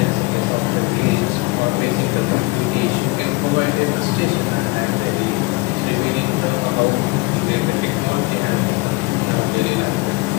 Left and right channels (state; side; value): quieter; right; 24.7 dB